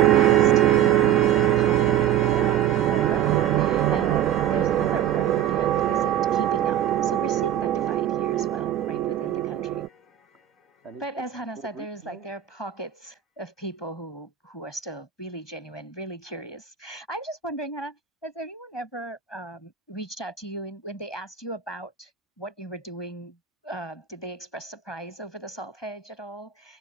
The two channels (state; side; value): quieter; left; 10.6 dB